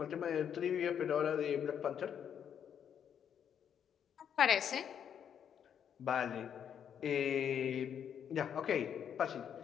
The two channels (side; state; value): right; quieter; 8.5 dB